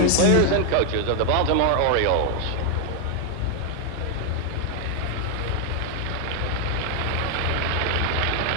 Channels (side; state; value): both; different; correlation 0.00